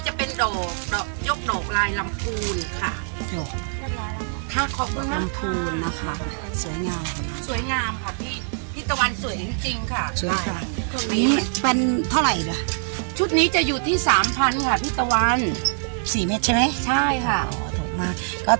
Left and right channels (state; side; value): silent; left; digital silence